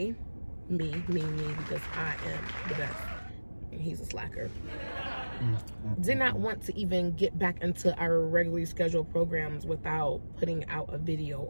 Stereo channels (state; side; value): inverted; both; correlation -1.00